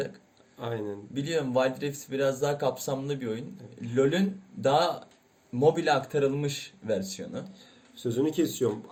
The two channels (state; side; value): identical; both; correlation 1.00